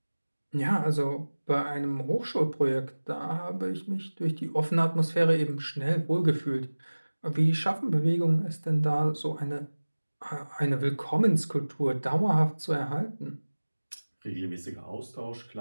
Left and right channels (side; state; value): both; inverted; correlation -1.00